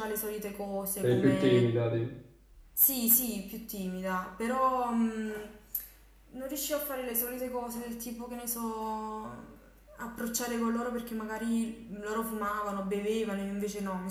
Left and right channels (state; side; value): identical; both; correlation 1.00